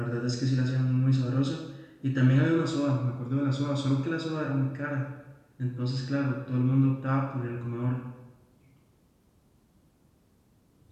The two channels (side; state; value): both; identical; correlation 1.00